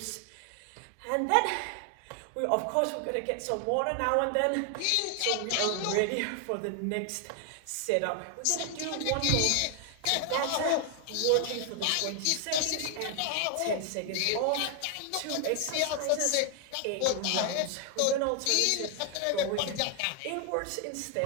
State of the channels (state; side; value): different; both; correlation 0.00